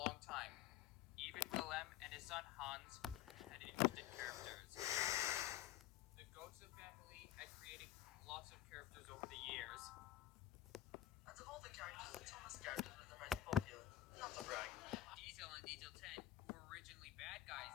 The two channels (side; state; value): right; quieter; 12.5 dB